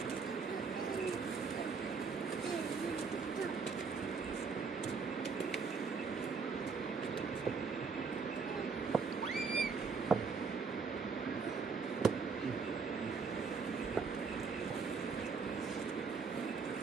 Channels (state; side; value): quieter; left; 5.2 dB